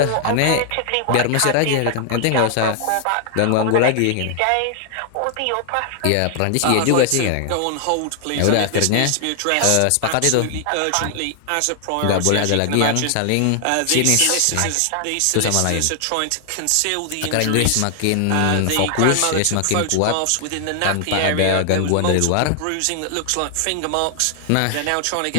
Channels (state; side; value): different; both; correlation 0.00